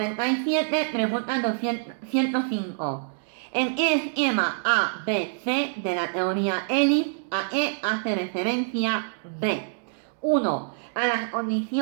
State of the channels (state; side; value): silent; left; digital silence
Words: pregunta 205. En el esquema A, B, C de la teoría Elif, ¿a qué hace referencia B? 1. A las